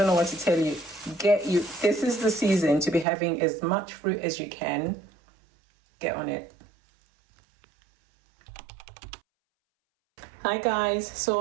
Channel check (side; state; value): left; drops out; at 3.1 s